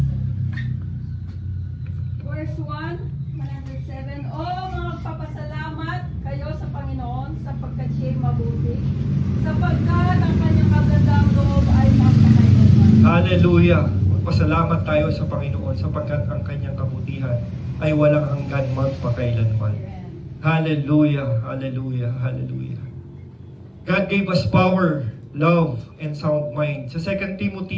Verse 1, 107. Magpapasalamat kayo sa Panginoon sapagkat siya'y mabuti, sapagkat ang kanyang kagandang loob ay magpakailanman. Hallelujah. Magpasalamat tayo sa Panginoon sapagkat ang kanyang kabutihan ay walang hanggan magpakailanman. Hallelujah. Hallelujah. Hallelujah. God gave us power, love, and sound mind. Sa 2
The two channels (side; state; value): both; identical; correlation 1.00